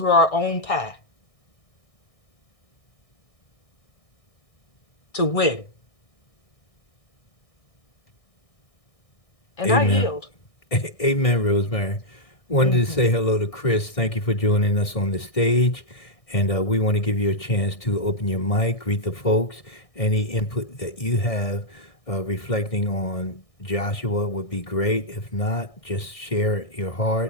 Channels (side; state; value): right; late; 1.6 ms